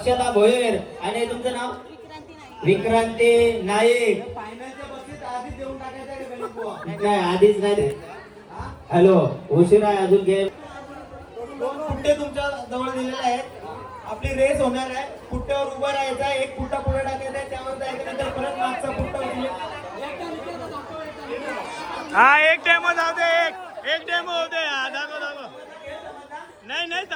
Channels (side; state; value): both; identical; correlation 1.00